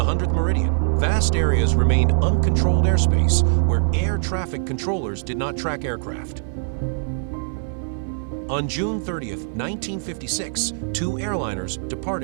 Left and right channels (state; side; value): silent; left; 57 dB below the other